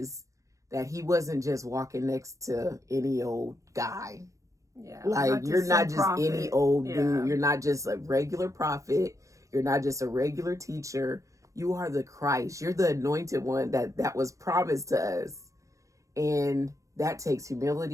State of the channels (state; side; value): late; left; 0.15 ms